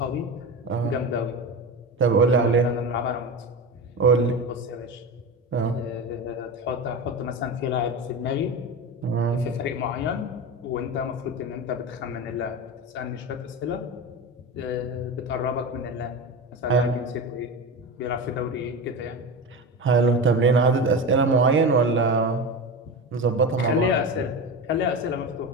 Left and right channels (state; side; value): normal; both; correlation 0.24